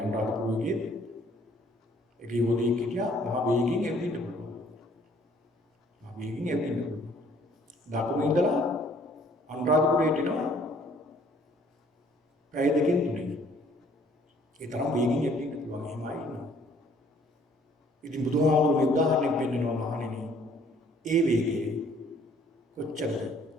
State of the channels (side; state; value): both; normal; correlation 0.59